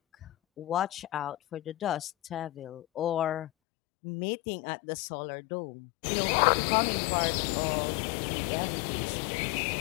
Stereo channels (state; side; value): drops out; right; at 3.5 s